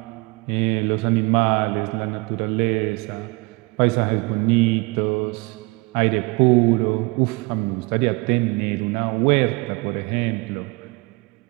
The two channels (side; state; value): left; quieter; 26.7 dB